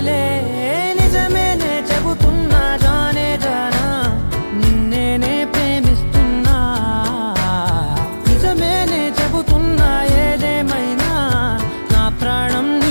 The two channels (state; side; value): inverted; both; correlation -1.00